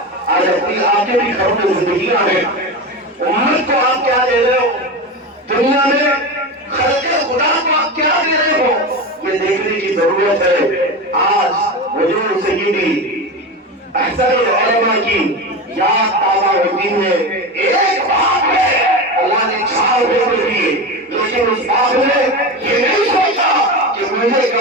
آج اپنی آپ کے بھی گھروں میں زندگیاں ہیں. امت کو آپ کیا دے رہے ہو؟ دنیا میں خلق خدا کو آپ کیا دے رہے ہو؟ یہ دیکھنے کی ضرورت ہے. آج حضور سیدی احسن العلماء کی یاد تازہ ہوتی ہے. ایک باپ ہے، اللہ نے 4 بیٹے دیے، لیکن اس باپ نے یہ نہیں سوچا کہ مجھے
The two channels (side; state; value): both; normal; correlation 0.23